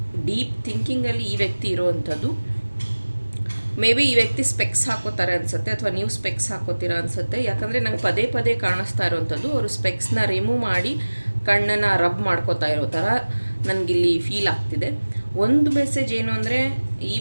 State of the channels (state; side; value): inverted; both; correlation -1.00